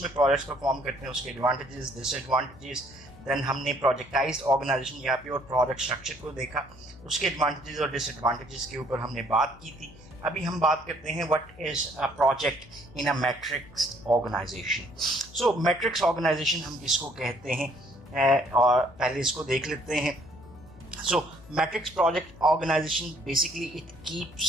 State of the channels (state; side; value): noise; left; hum, 22 dB below the sound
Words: प्रोजेक्ट्स परफॉर्म करते हैं, उसके एडवांटेजेस डिसएडवांटेजेस। देन हमने प्रोजेक्टाइज्ड ऑर्गेनाइजेशन या प्योर प्रोजेक्ट स्ट्रक्चर को देखा, उसके एडवांटेजेस और डिसएडवांटेजेस के ऊपर हमने बात की थी। अभी हम बात करते हैं what is a project in a matrix organization. So matrix organization हम किसको कहते हैं और पहले इसको देख लेते हैं। So matrix project organization basically it